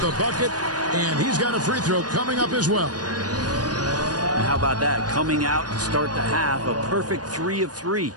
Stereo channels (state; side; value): late; left; 0.69 ms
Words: bucket, and he's got a free throw coming up as well. And how about that? Coming out to start the half, a perfect 3 of 3.